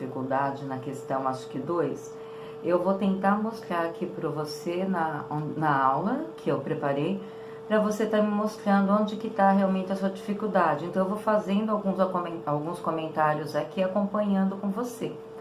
na questão, acho que 2. Eu vou tentar mostrar aqui para você na aula que eu preparei, para você estar me mostrando onde que está realmente a sua dificuldade. Então, eu vou fazendo alguns comentários aqui, acompanhando com você,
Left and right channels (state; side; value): identical; both; correlation 1.00